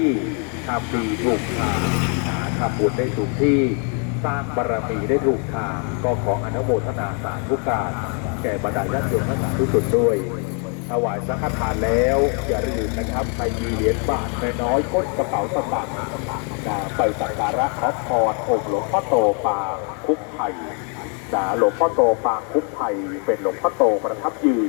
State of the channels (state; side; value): quieter; right; 39.7 dB